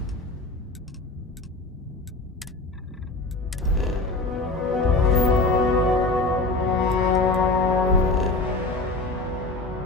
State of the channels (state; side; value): quieter; right; 3.2 dB